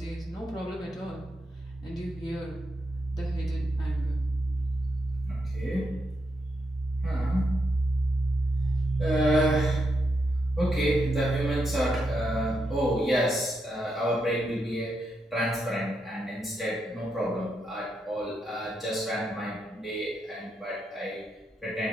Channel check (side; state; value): both; normal; correlation 0.82